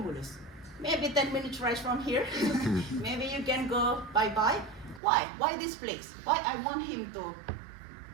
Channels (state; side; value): drops out; left; at 5.0 s